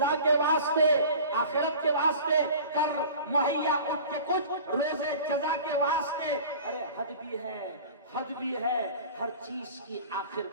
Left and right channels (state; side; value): inverted; both; correlation -0.41